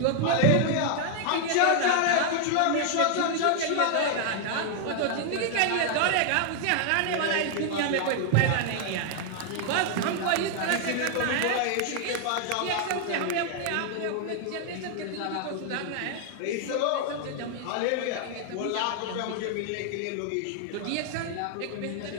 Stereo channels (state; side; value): different; both; correlation 0.00